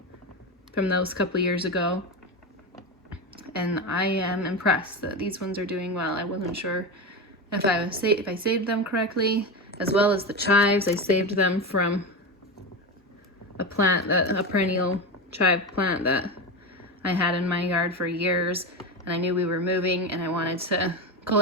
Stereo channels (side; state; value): both; normal; correlation 0.19